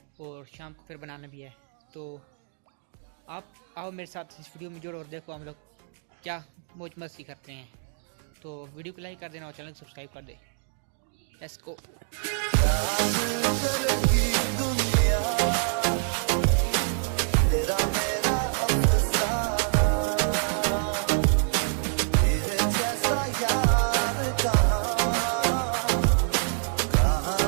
और शाम को फिर बनाना भी है। तो आप आओ मेरे साथ इस वीडियो में जुड़ो और देखो हम लोग क्या मौज मस्ती करते हैं। तो वीडियो को लाइक कर देना और चैनल को सब्सक्राइब कर दे। Let's go.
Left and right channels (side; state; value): left; silent; digital silence